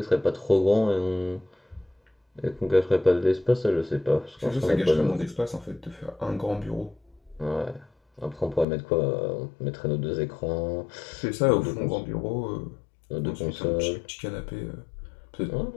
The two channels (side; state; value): right; drops out; at 8.7 s